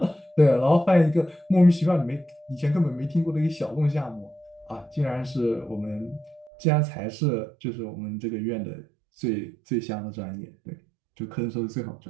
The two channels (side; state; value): left; drops out; at 6.5 s